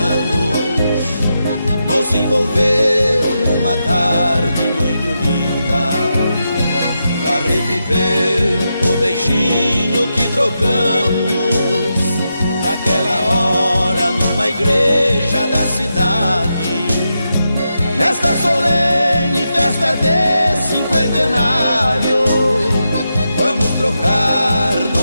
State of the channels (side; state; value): both; inverted; correlation -0.86